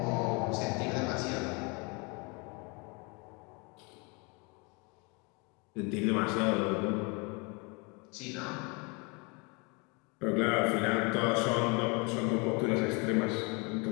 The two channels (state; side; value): quieter; right; 30.6 dB